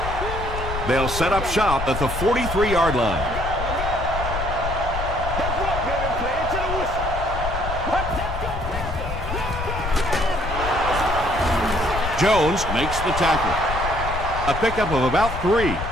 They'll set up shop at the 43-yard line. Jones makes the tackle. A pickup of about 3.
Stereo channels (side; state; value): left; noise; rumble, 5 dB below the sound